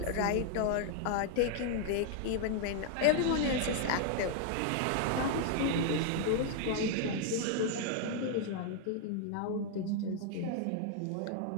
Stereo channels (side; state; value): both; different; correlation 0.00